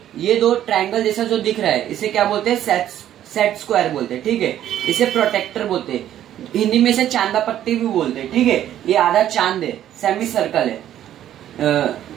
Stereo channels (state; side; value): quieter; left; 11.6 dB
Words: ये दो ट्रायंगल जैसा जो दिख रहा है इसे क्या बोलते हैं, सेट स्क्वायर बोलते हैं। ठीक है, इसे प्रोटेक्टर बोलते हैं, हिंदी में इसे चांदा पट्टी भी बोलते हैं। ठीक है, ये आधा चांद है, सेमी सर्कल है,